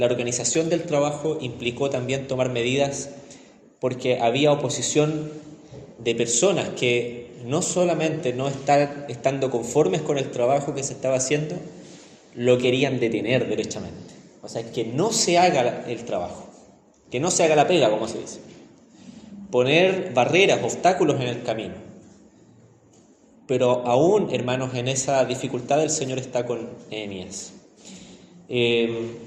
organización del trabajo implicó también tomar medidas, porque había oposición de personas que no solamente no estando conformes con el trabajo que se estaba haciendo, lo querían detener derechamente. O sea, que no se haga el trabajo, que no se haga la pega, como se dice. Poner barreras, obstáculos en el camino. Pero aún, hermanos, en esa dificultad el Señor está con Nehemías.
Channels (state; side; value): identical; both; correlation 1.00